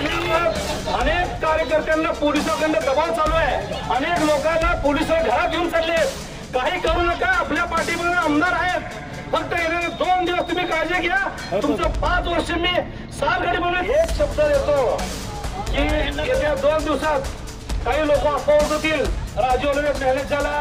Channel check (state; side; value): identical; both; correlation 1.00